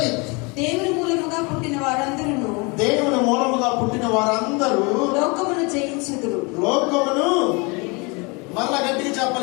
దేవుని మూలముగా పుట్టిన వారందరూ, దేవుని మూలముగా పుట్టిన వారందరూ లోకమును జయించుదురు. లోకమును మళ్ళా గట్టిగా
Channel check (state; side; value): quieter; right; 29.0 dB